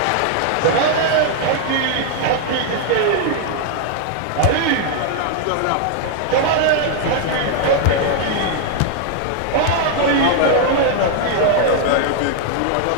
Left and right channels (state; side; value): different; both; correlation 0.00